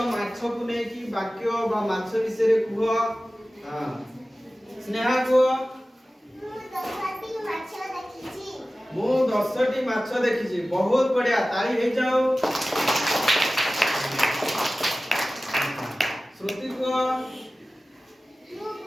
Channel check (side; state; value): both; normal; correlation 0.96